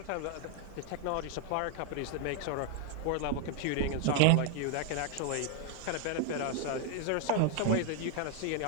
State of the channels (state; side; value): different; both; correlation 0.00